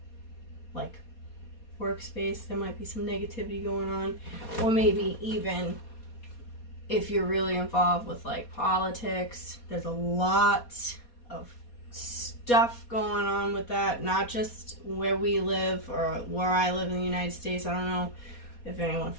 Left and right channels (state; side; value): late; right; 4.2 ms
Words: like workspace, there might be some negativity going on, or maybe even if you're really involved with like politics, there's a lot of stuff going on with that, not just where we live or where I live in the United States. I don't know if anyone